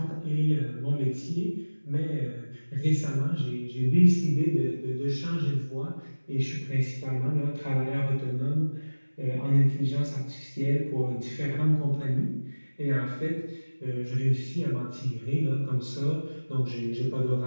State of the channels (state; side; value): inverted; both; correlation -1.00